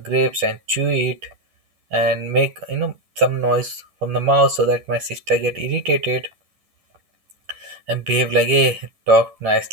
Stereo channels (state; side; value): late; left; 11 ms